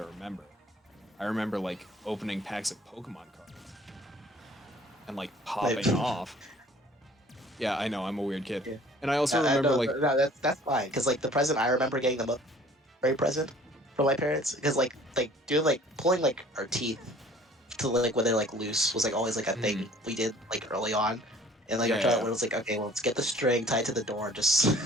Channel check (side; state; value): both; normal; correlation 0.52